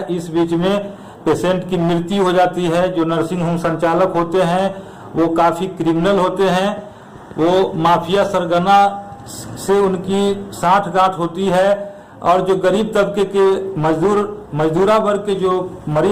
इस बीच में पेशेंट की मृत्यु हो जाती है। जो नर्सिंग होम संचालक होते हैं वो काफी क्रिमिनल होते हैं। वो माफिया सरगना से उनकी साठगांठ होती है और जो गरीब तबके के मजदूरा वर्ग के जो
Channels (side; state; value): both; identical; correlation 1.00